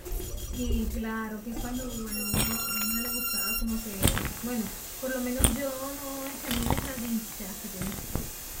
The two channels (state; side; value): identical; both; correlation 1.00